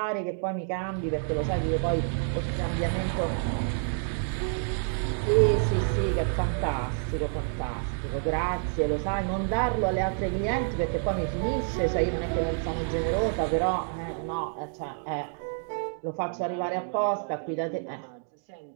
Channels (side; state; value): left; silent; 59 dB below the other